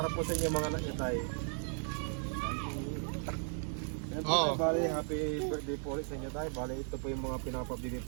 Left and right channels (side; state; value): left; silent; 54 dB below the other